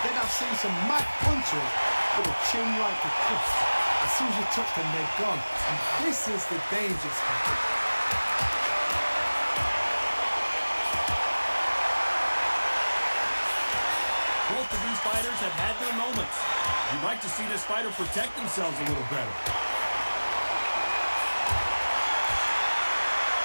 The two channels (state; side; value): inverted; both; correlation -1.00